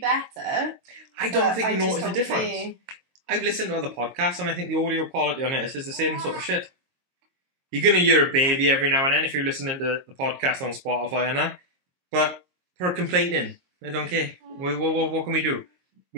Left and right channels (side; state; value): left; late; 22 ms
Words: I don't think you notice a difference. I've listened to other podcasts and I think the audio quality on it is the same sort of shit. You're going to hear a baby every now and then if you're listening to the podcast on Spotify and that. But for complaining, I don't care. What can we do?